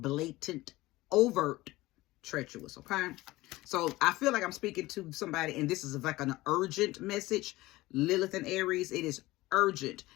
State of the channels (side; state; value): right; quieter; 18.9 dB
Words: overt treacherous, okay? So I feel like I'm speaking to somebody, and this is like an urgent message. Lilith and Aries, it is urgent